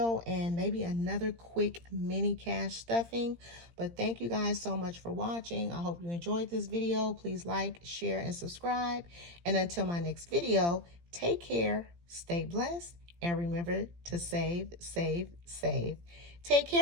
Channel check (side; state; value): left; late; 17 ms